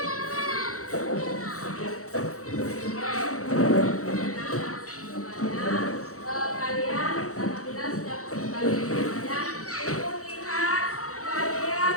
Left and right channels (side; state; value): right; late; 0.65 ms